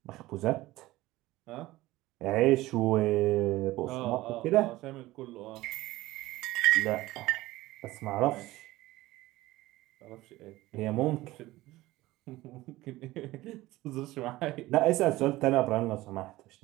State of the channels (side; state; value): left; quieter; 17.8 dB